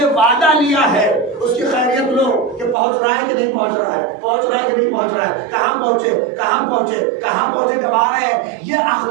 وعدہ لیا ہے، اس کی خیریت لو کہ پہنچ رہا ہے کہ نہیں پہنچ رہا ہے، پہنچ رہا ہے کہ نہیں پہنچ رہا ہے، کہاں پہنچے کہاں پہنچے کہاں پہنچے کب آ رہے ہیں۔ یہ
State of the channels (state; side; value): drops out; left; at 2.8 s